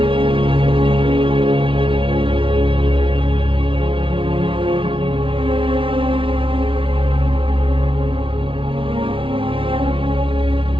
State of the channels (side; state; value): left; late; 0.25 ms